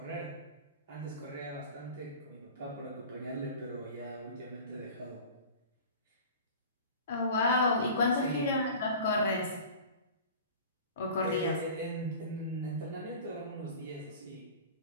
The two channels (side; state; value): both; inverted; correlation -0.39